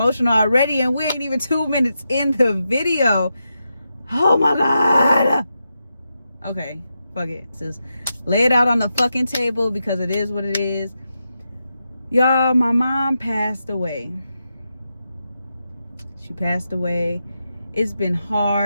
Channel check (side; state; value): both; inverted; correlation -0.87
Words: already, and we ain't even 2 minutes in the video. Oh my God. Okay, fuck it. Just lay it out on the fucking table because it is what it is. Y'all, my mom passed away. She passed away. It's been